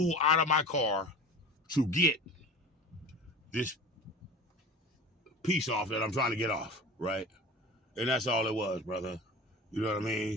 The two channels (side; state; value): both; normal; correlation 0.35